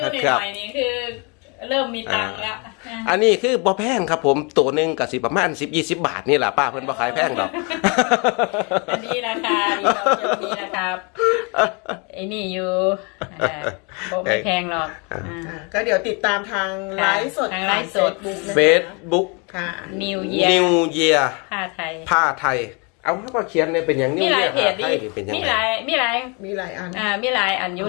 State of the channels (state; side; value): quieter; right; 32.2 dB